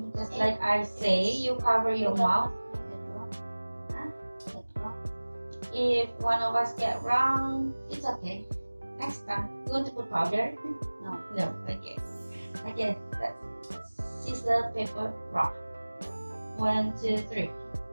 just like I say. You cover your mouth. If one of us get wrong, it's okay. Next time, you want to put powder? No. No. Okay. Okay. Let's scissors, paper, rock. 1, 2, 3.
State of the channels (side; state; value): both; inverted; correlation -1.00